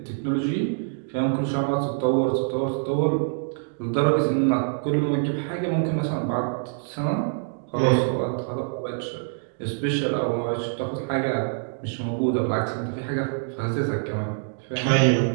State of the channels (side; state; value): left; silent; digital silence